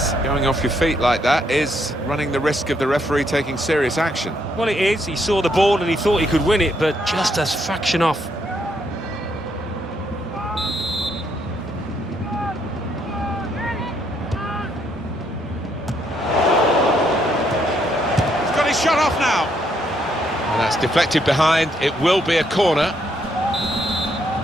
going off your feet like that is running the risk of the referee taking serious action. Well, it is. He saw the ball and he thought he could win it, but just a fraction off. He's got his shot off now. And that's deflected behind. It will be a corner.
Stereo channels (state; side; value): normal; both; correlation 0.73